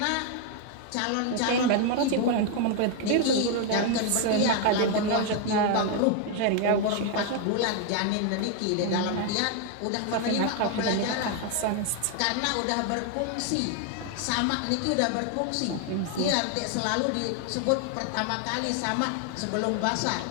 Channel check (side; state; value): both; different; correlation 0.01